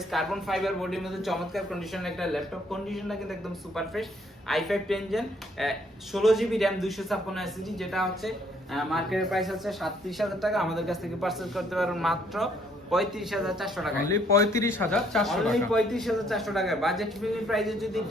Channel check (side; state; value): both; normal; correlation 0.66